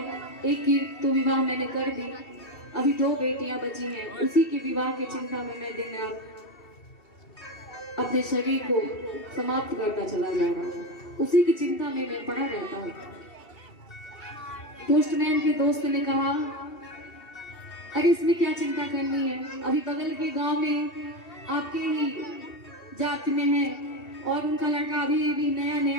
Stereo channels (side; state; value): right; late; 2.7 ms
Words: एक की तो विवाह मैंने कर दी, अभी 2 बेटियां बची हैं, उसी की विवाह की चिंता में मैं दिन रात अपने शरीर को समाप्त करता चला जा रहा हूँ, उसी की चिंता में मैं पड़ा रहता हूँ। पोस्टमैन के दोस्त ने कहा, अरे इसमें क्या चिंता करनी है, अभी बगल के गांव में आपके ही जात में है और उनका लड़का अभी नया